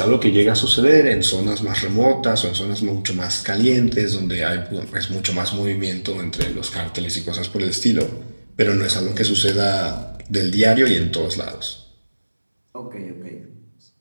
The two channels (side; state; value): both; inverted; correlation -1.00